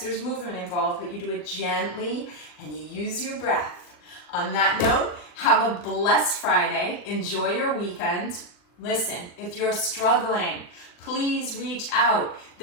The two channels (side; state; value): right; late; 39 ms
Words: movement involved, but you do it gently and you use your breath. On that note, have a blessed Friday. Enjoy your weekend. Listen, if you're struggling, please reach out.